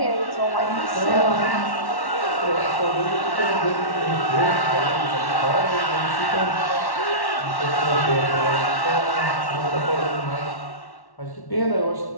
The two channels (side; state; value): right; late; 1.1 ms